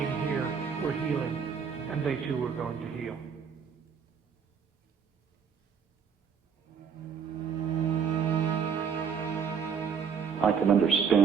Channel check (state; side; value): quieter; left; 6.8 dB